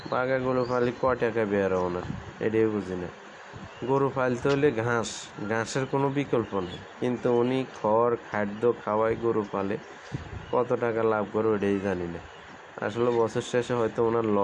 গরু পালি, ক টাকা বের ওনার, এটাই বুঝি না। গরু পালতে হলে ঘাসের কোনো বিকল্প নেই, কিন্তু উনি খাদ্য খাওয়ায় গরু পালে, কত টাকা লাভ করে ওটাই জানি না। আসলে বছর শেষে হয়তো ওনার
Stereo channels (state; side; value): identical; both; correlation 1.00